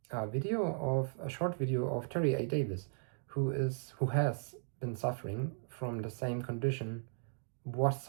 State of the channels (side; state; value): left; silent; digital silence